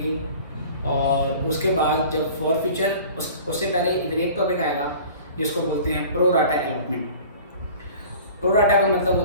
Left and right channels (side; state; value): both; inverted; correlation -0.44